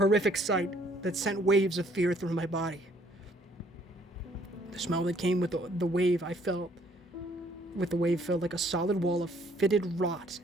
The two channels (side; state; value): both; normal; correlation 0.63